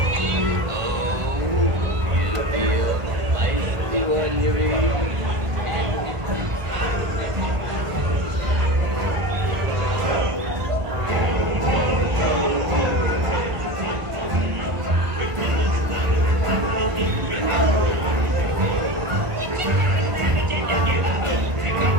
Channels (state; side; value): late; left; 1.3 ms